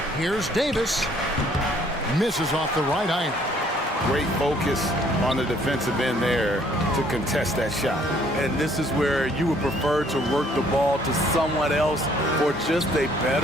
Here's Davis. Misses off the right iron. Great focus on the defensive end there to contest that shot. And this is where you would prefer to work the ball to someone else for just a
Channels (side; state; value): both; normal; correlation 0.62